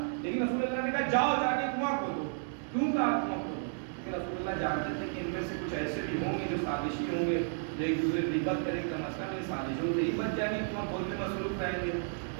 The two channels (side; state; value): left; silent; 56 dB below the other